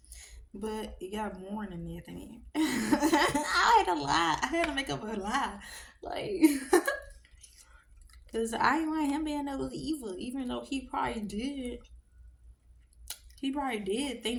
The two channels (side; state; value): both; identical; correlation 1.00